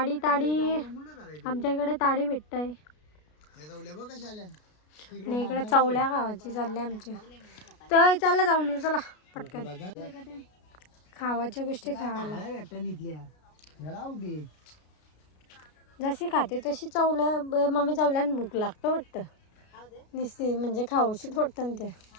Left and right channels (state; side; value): late; right; 33 ms